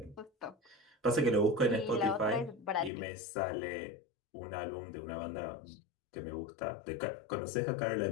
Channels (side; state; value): right; drops out; at 2.9 s